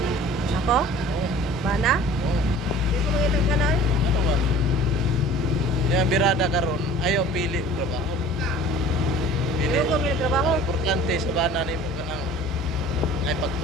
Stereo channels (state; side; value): normal; both; correlation 0.46